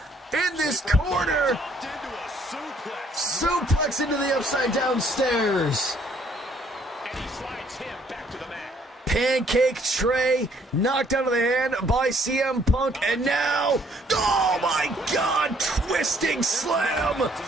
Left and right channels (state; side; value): normal; both; correlation 0.64